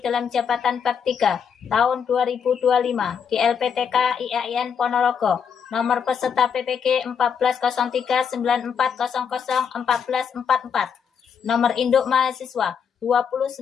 dalam jabatan Bab 3 tahun 2025 di LPTK IAIN Ponorogo. Nomor peserta PPG 140394001444. Nomor induk mahasiswa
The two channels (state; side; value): quieter; right; 7.1 dB